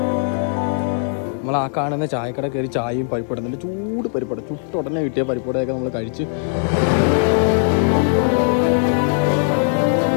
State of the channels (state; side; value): silent; right; 66 dB below the other